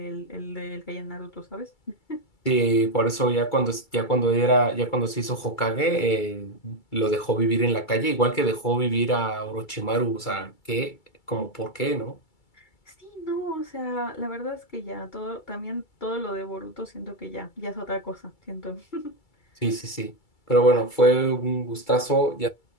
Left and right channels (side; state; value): right; late; 2.3 ms